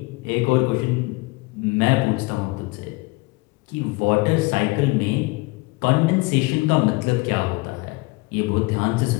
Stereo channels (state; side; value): quieter; right; 24.3 dB